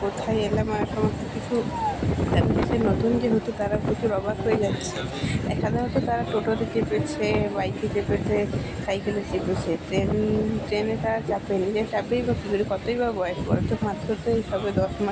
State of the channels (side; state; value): both; identical; correlation 1.00